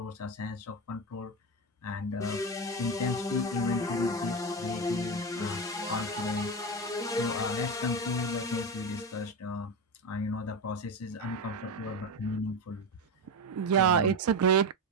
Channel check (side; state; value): both; normal; correlation 0.16